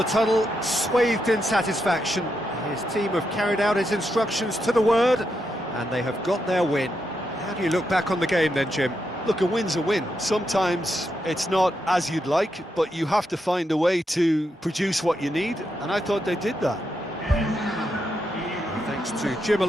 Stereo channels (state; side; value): normal; both; correlation 0.83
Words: tunnel, swathed in satisfaction. His team have carried out his instructions to the word, and they have got their win. How do you look back on the game then, Jim? Look, a win's a win. Sometimes it's not as you'd like, but you have to find a way to produce what you need, and I thought they did that. Thanks to Jim